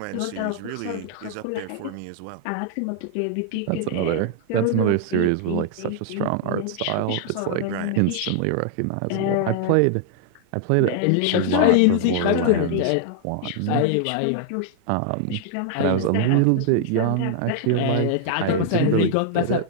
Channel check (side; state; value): both; different; correlation 0.00